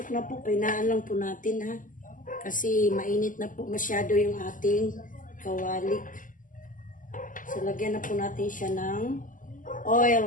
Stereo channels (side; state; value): right; late; 0.38 ms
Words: na po. Painaan lang po natin ha. Kasi mainit na po masyado yung ating kawali. So lagyan na po natin siya ng